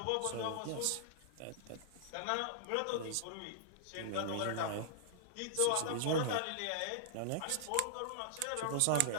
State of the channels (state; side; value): different; both; correlation -0.01